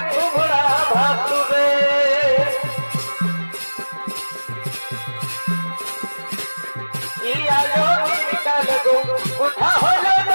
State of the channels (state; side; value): inverted; both; correlation -1.00